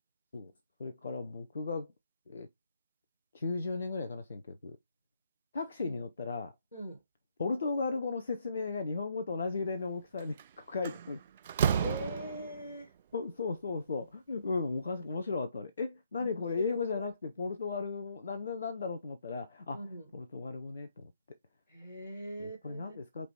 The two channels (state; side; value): inverted; both; correlation -0.71